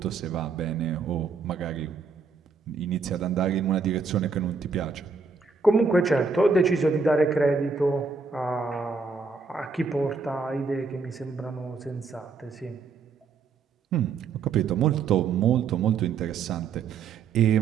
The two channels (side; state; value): left; quieter; 5.0 dB